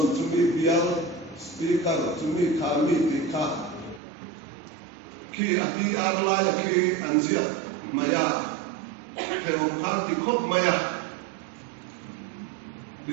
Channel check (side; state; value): left; drops out; at 4.0 s